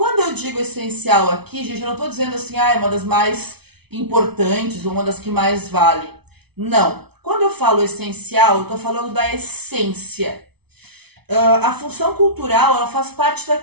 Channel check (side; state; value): left; late; 0.98 ms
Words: eu digo essencial aqui, gente, eu não estou dizendo assim, é uma das mais importantes ou uma das que mais vale. Não. Quando eu falo essencial, eu estou falando da essência. A função cultural, ela faz parte